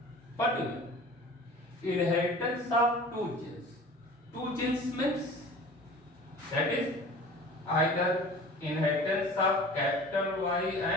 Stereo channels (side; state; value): both; normal; correlation 0.42